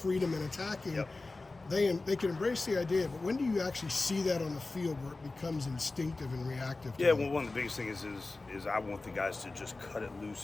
in attacking, they can embrace the idea. But when do you actually see that on the field where it becomes instinctive and reactive? Yeah, well, one of the biggest things is I want the guys to just cut it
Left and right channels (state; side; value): quieter; right; 3.4 dB